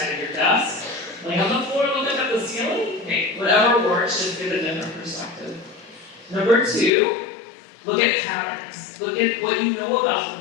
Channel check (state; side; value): drops out; right; at 6.9 s